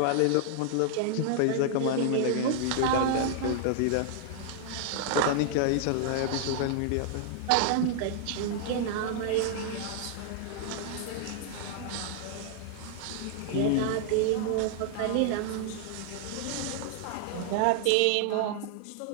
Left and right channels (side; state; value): both; different; correlation 0.00